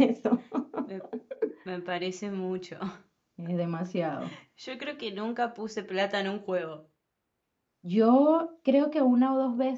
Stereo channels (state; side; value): identical; both; correlation 1.00